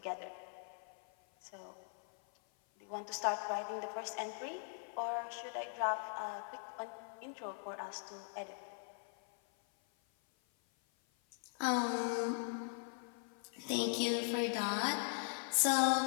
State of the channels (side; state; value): right; silent; 51 dB below the other